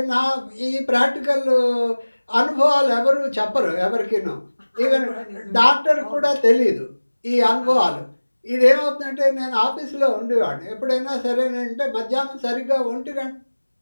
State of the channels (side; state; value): both; inverted; correlation -1.00